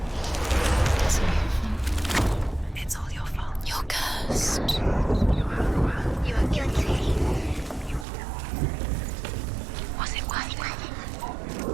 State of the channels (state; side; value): drops out; left; at 8.1 s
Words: It's all your fault. You're cursed. You are guilty. Was it worth it?